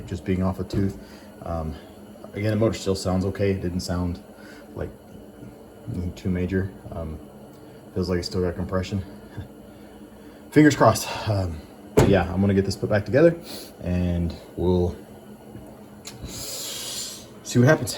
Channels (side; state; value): both; identical; correlation 1.00